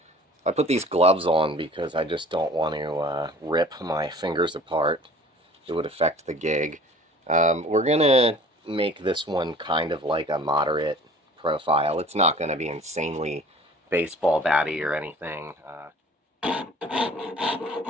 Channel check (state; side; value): normal; both; correlation 0.48